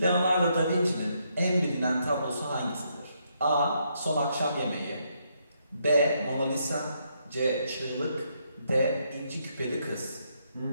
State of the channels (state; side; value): inverted; both; correlation -0.76